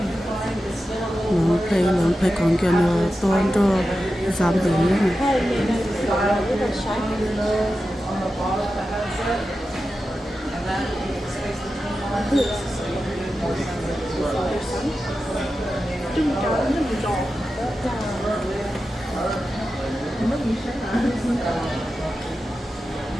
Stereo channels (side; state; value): both; normal; correlation 0.92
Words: một cái nó phải còn kia nó toan cho giảm tử nữa này.